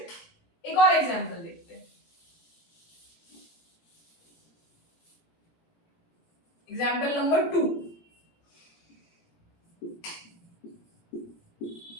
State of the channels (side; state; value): right; late; 17 ms